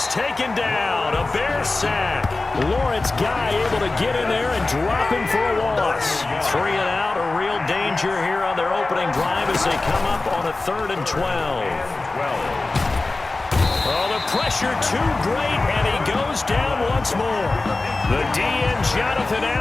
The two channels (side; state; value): right; quieter; 3.3 dB